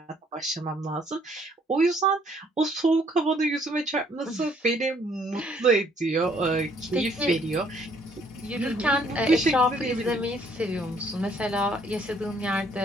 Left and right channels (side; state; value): both; normal; correlation 0.64